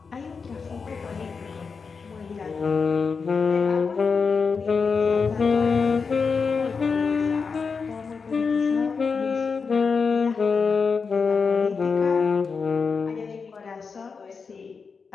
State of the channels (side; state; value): right; quieter; 5.2 dB